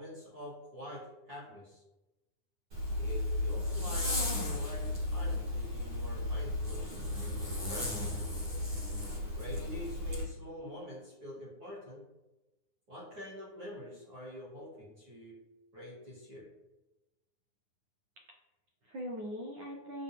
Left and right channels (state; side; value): late; left; 9.7 ms